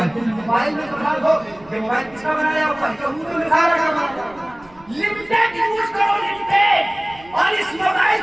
میں تو خاص ہو کہ موبائل کس کا بنایا ہوا ہے؟ یہودیوں نے سارا کا بنایا. لمیٹڈ یوز کرو, لمیٹڈ. اور اس موبائل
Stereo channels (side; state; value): right; noise; rumble, 25 dB below the sound